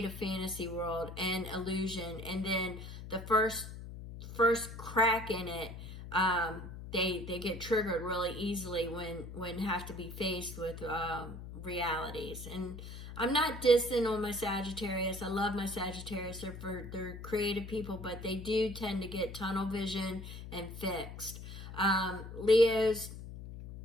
a fantasy world and illusion. And then the first crack in it, they get triggered really easily when have to be faced with realities. And I'm not dissing on my Sagittarius. I love my Sagittarius. They're creative people, but they do tend to get tunnel vision and fixed. Leos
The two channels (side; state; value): left; noise; hum, 11 dB below the sound